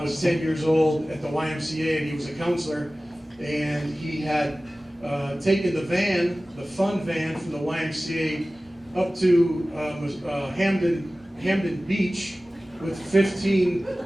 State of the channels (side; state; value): both; normal; correlation 0.97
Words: 10 years old at the YMCA, and he was a counselor, and he had taken the fun van from the YMCA up to Hamden Beach with 15